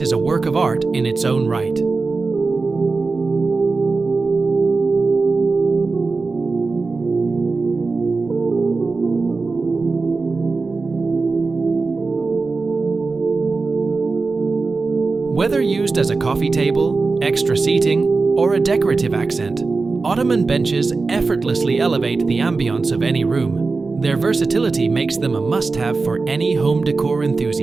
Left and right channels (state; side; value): quieter; left; 4.0 dB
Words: a work of art in its own right. Whether used as a coffee table, extra seating, or a decorative accent, Ottoman benches effortlessly elevate the ambiance of any room. Their versatility makes them a must-have for any home decor